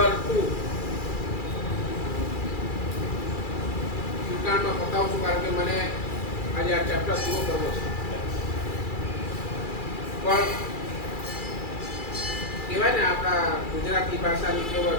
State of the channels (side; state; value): right; late; 2.3 ms